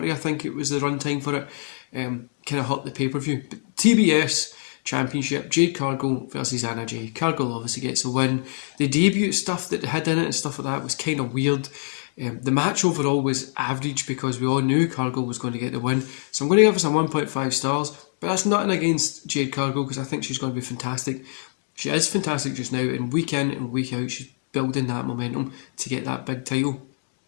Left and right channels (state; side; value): silent; right; 60 dB below the other